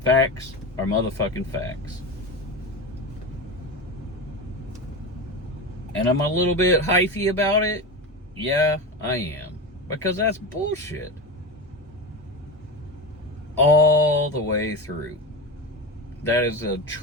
facts are motherfucking facts. And I'm a little bit hyphy about it. Yeah, I am. Because that's bullshit. All the way through. That is a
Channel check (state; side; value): normal; both; correlation 0.24